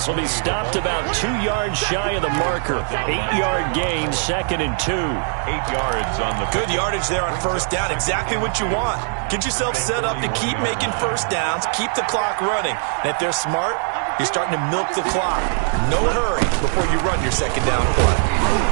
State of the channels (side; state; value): left; silent; 62 dB below the other